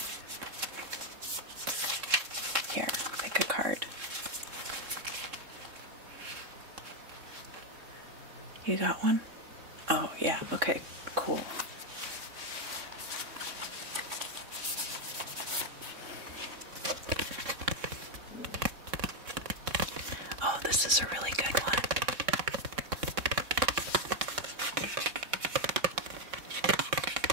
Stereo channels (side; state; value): left; late; 3.7 ms